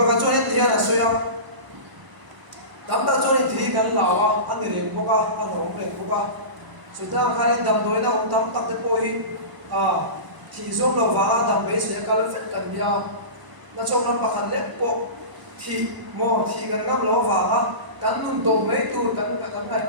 cho nên thì là suy à tắm ta cho nên thì gần lão à ăn người liền bốc à ăn đồng liền bốc à suy ra cái đầm đôi nó ông tắm tắc tới bôi à thì zoom lo va dam be se kal fet kan bia na chong ram pakhan le po thì mo thì kan ngam lo va ha kan nun to mai tu kan ngai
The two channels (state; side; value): late; left; 1.0 ms